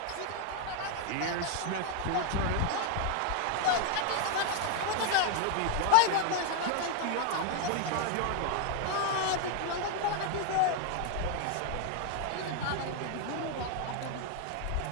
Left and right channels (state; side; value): different; both; correlation 0.01